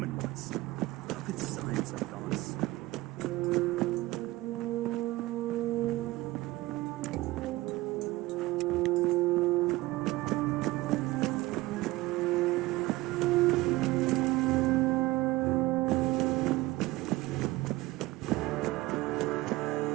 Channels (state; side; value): quieter; left; 19.3 dB